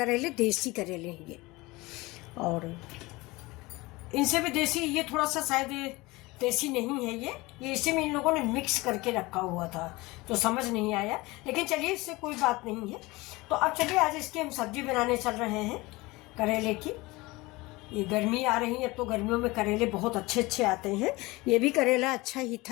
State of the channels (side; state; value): right; quieter; 22.0 dB